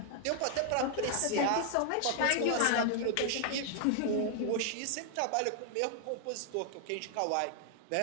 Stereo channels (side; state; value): both; different; correlation 0.00